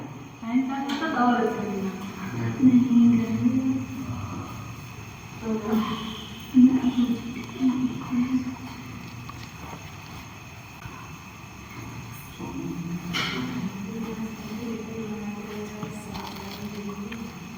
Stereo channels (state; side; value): identical; both; correlation 1.00